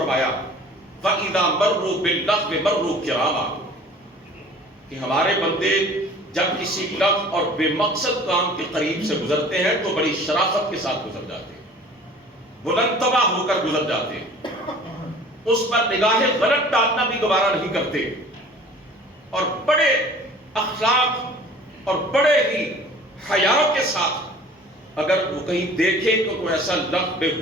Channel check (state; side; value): normal; both; correlation 0.47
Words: وَإِذَا مَرُّوا بِاللَّغْوِ مَرُّوا كِرَامًا، کہ ہمارے بندے جب کسی لغو اور بے مقصد کام کے قریب سے گزرتے ہیں تو بڑی شرافت کے ساتھ گزر جاتے ہیں، بلند طبع ہو کر گزر جاتے ہیں، اس پر نگاہ غلط ڈالنا بھی گوارا نہیں کرتے، اور بڑے اخلاق اور بڑے ہی حیا کے ساتھ اگر وہ کہیں دیکھیں کہ کوئی ایسا لغو